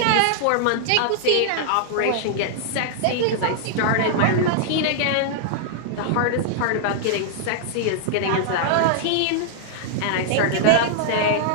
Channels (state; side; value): different; both; correlation -0.01